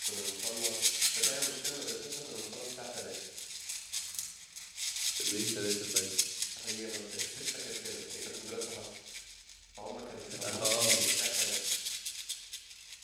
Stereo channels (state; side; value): identical; both; correlation 1.00